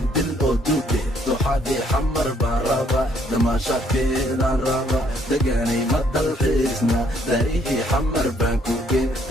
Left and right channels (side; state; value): both; normal; correlation 0.67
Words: oo duuge duxadii xamar baan raba damaashaadkeedaan raba deganay ma dalxiisna daarihii xamar baan ku geen